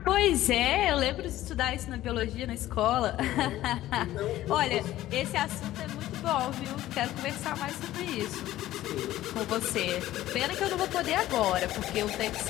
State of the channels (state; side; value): quieter; right; 14.6 dB